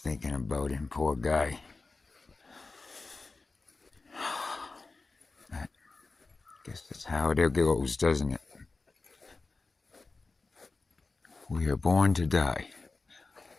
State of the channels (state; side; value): quieter; right; 3.7 dB